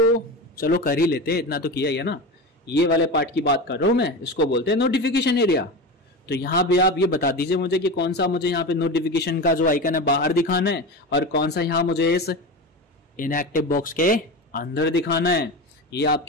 चलो कर ही लेते हैं, इतना तो किया ही है ना। ये वाले पार्ट की बात कर रहा हूं मैं, इसको बोलते हैं नोटिफिकेशन एरिया। तो यहाँ पे आप ये बता दीजिए मुझे कि कौन सा मुझे यहाँ पे नोटिफिकेशन का जो आइकन है बाहर दिखाना है, और कौन सा यहाँ मुझे इस इनएक्टिव बॉक्स के अंदर दिखाना है। ये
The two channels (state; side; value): normal; both; correlation 0.25